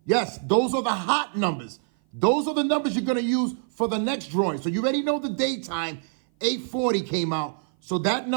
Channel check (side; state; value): left; silent; 57 dB below the other